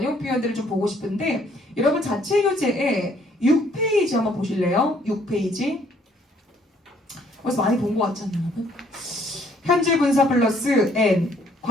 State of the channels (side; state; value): both; normal; correlation 0.63